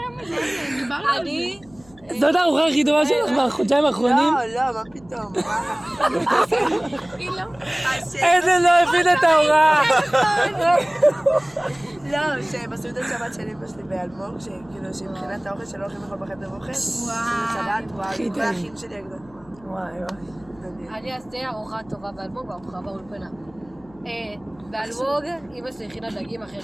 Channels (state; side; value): noise; left; hum, 26 dB below the sound